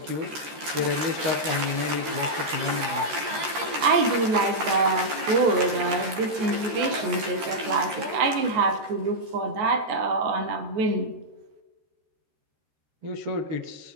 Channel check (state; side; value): late; left; 13 ms